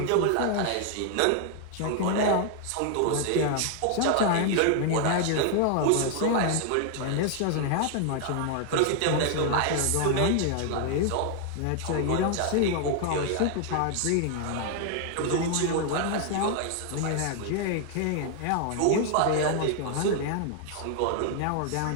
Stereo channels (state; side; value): different; both; correlation 0.00